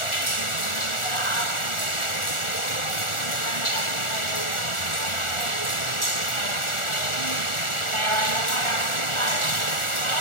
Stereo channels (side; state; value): right; late; 1.4 ms